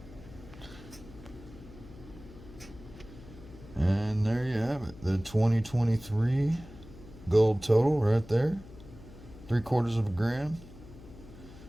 the 2023 gold total right there. 3/4 of a gram.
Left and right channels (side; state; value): left; noise; hum, 18 dB below the sound